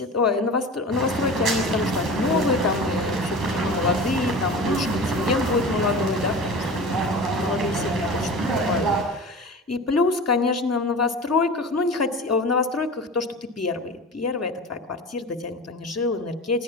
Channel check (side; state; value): both; normal; correlation 0.34